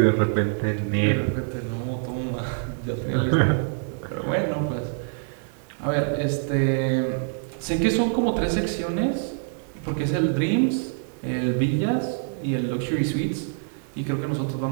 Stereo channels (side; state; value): left; silent; digital silence